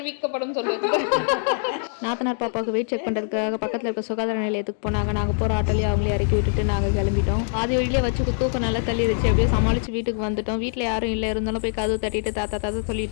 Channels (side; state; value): right; silent; digital silence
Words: சொல்லுவது. நாத்தனார் பாப்பாவுக்கு வெயிட் செக் பண்ணுறதுக்காக பக்கத்தில் இருக்க சுகாதார நிலையத்துக்கு போனாங்க. நாங்கள் போகிற ஆட்டோலேயே அவங்களே இறக்கி விட்டுட்டு நாங்கள் கிளம்பிட்டோம். பாதி வழியிலே வச்சு தூக்கம் நல்லா தள்ளிடுச்சு. எப்படியோ சமாளித்து வீட்டுக்கு வந்துட்டோம். வீட்டில் யாரும் இல்லை, இருந்தாலும் போய் கதவு தட்டிட்டு தாத்தா